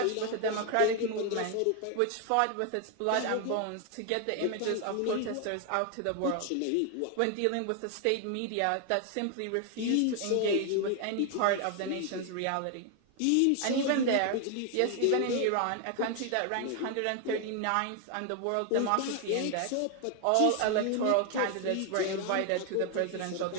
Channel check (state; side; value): different; both; correlation 0.01